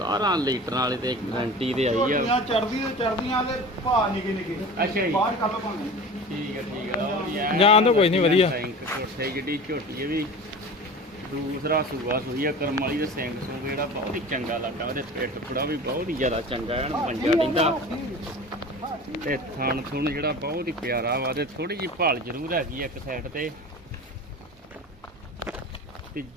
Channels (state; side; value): normal; both; correlation 0.36